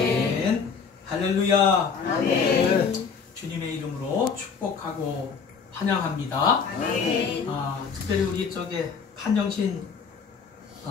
할렐루야. 아멘. 주님의 이름으로 축복하고 환영합니다. 특별히 우리 쪽에 판정신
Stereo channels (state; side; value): quieter; right; 5.7 dB